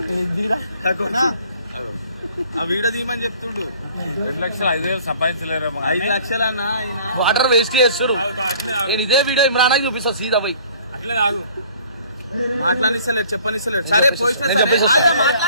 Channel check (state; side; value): inverted; both; correlation -0.54